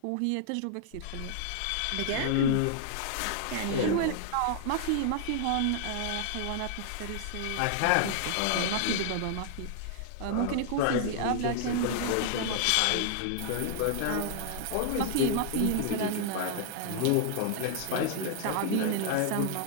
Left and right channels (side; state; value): both; different; correlation 0.00